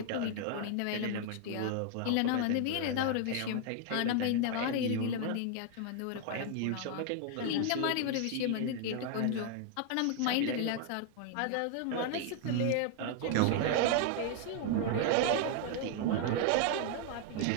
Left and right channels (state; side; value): different; both; correlation 0.00